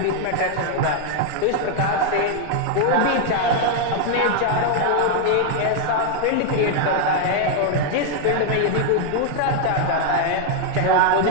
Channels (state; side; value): different; both; correlation 0.00